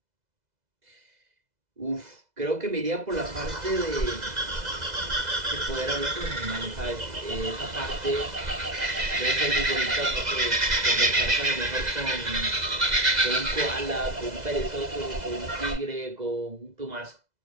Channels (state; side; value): late; left; 2.0 ms